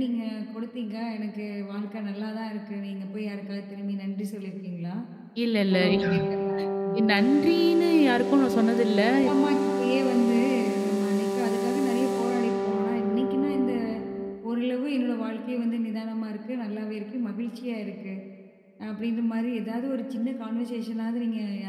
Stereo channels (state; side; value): identical; both; correlation 1.00